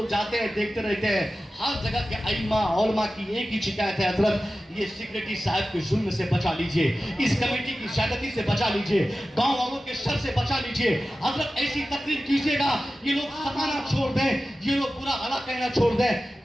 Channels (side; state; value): both; normal; correlation 0.94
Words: जाते हैं, देखते रहते हैं, हर जगह के अइम्मा उलमा की एक ही शिकायत है, हजरत ये सेक्रेटरी साहब के जुल्म से बचा लीजिए, इस कमेटी की ज्यादती से बचा लीजिए, गांव वालों के शर से बचा लीजिए। हजरत ऐसी तकरीर कीजिएगा ये लोग सताना छोड़ दें, ये लोग बुरा भला कहना छोड़ दें।